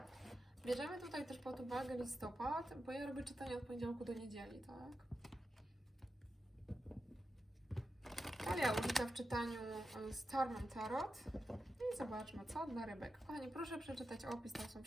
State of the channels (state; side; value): normal; both; correlation 0.89